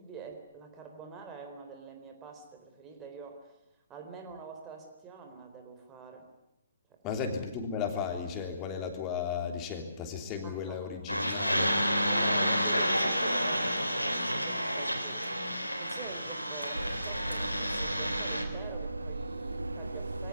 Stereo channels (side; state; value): both; inverted; correlation -0.79